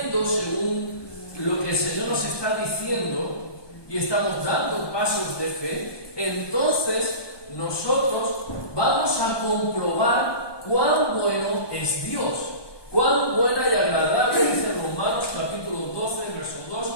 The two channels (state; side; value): late; right; 1.2 ms